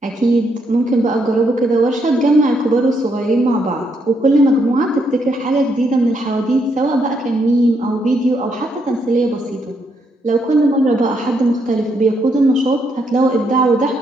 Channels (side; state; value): both; normal; correlation 0.76